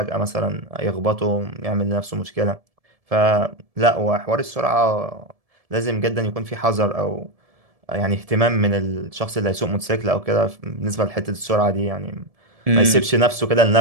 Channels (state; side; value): late; left; 1.7 ms